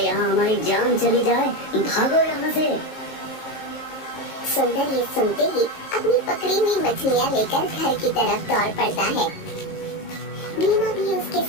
हमारी जान चली जाए, भागो यहाँ से। सुंदर ये सुनते ही अपनी पकड़ी हुई मछलियाँ लेकर घर की तरफ दौड़ पड़ता है। भीमा भी उसके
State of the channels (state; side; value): late; right; 19 ms